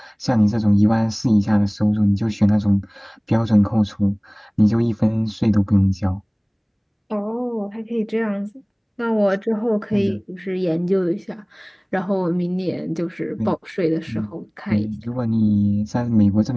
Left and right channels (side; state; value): both; identical; correlation 1.00